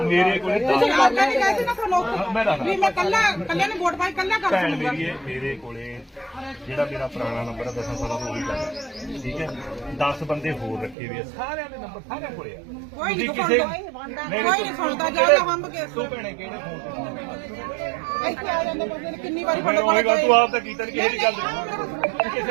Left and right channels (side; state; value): left; drops out; at 11.0 s